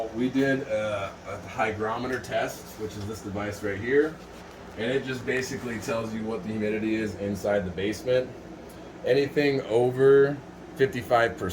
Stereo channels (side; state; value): both; identical; correlation 1.00